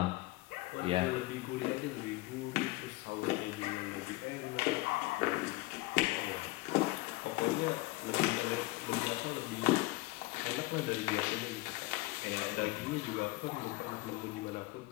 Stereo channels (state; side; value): quieter; right; 20.7 dB